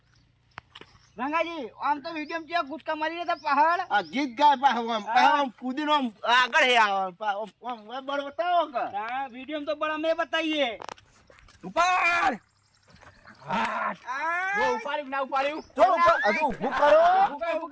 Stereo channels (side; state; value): both; identical; correlation 1.00